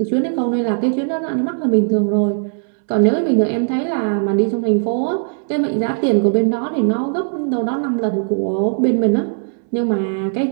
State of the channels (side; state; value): left; silent; 67 dB below the other